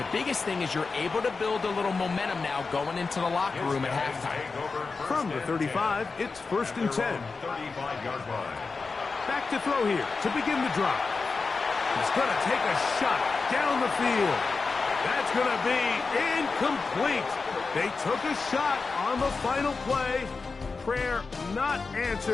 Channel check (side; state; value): right; quieter; 4.4 dB